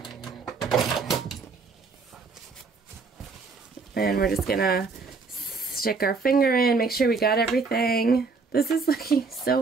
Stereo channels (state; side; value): quieter; left; 4.5 dB